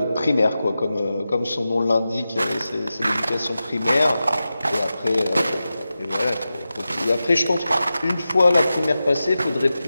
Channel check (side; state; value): both; inverted; correlation -0.93